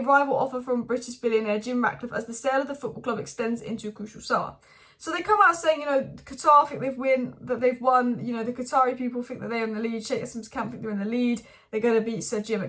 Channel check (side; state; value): both; identical; correlation 1.00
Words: rival offer from British billionaire Jim Ratcliffe as the sale of the football club extends into a crucial summer. So they come out saying, you know, Qatar think they've won, you know, the Qatari people think that they're in the lead, Sheikh Hassan's camp think they're in the lead, they're going to beat Sir Jim,